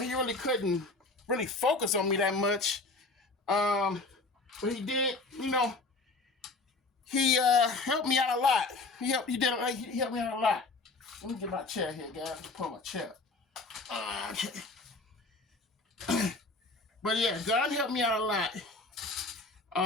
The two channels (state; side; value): quieter; right; 3.4 dB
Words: really couldn't really focus on me that much. But he did, he helped me out a lot. He helped me out a lot. Let me get my chair here, guys. Let me pull my chair. Okay. But yeah, Don helped me out a lot.